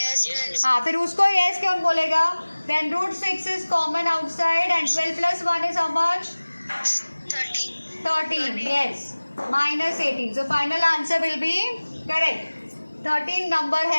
yes. हाँ, फिर उसको yes क्यों बोलेगा? Then √6 is common outside and 12 plus 1 is how much? 13. 13. Yes. Minus 18. So final answer will be correct. 13 number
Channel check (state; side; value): inverted; both; correlation -1.00